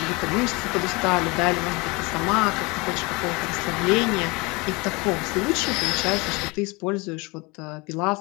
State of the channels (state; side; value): quieter; right; 26.1 dB